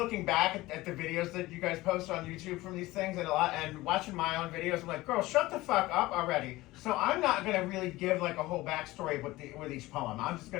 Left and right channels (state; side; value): quieter; right; 18.8 dB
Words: back at the videos that you guys post on YouTube from these things and watching my own videos. I'm like, girl, shut the fuck up already. So I'm not going to really give like a whole backstory with each poem. I'm just